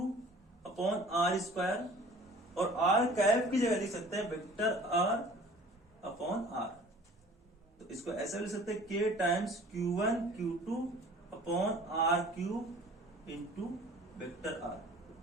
upon R square, और आर कैप की जगह लिख सकते हैं वेक्टर आर अपॉन आर। तो इसको ऐसे लिख सकते हैं K times Q1 Q2 upon R cube into vector R.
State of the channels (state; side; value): normal; both; correlation 0.48